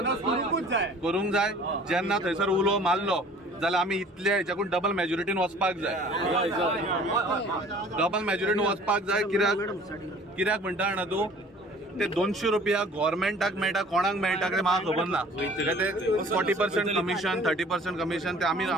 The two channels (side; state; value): both; normal; correlation 0.50